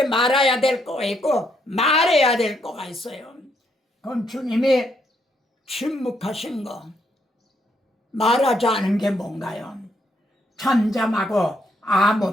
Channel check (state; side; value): normal; both; correlation 0.74